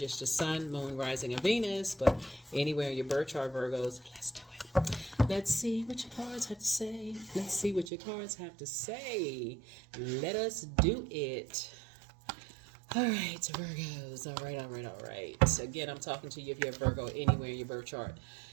the sun, moon, rising, and Venus, but anywhere in your birth chart, Virgos. Let's do it. Let's see what your cards have to say. Let's see what your cards have to say. Let us do it. All right, Virgos. All right. So again, I'm talking to you if you have Virgo anywhere in your birth chart.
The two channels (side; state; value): left; drops out; at 7.9 s